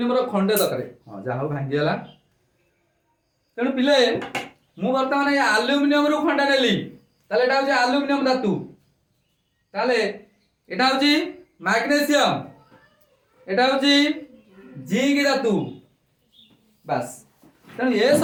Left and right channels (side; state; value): both; identical; correlation 1.00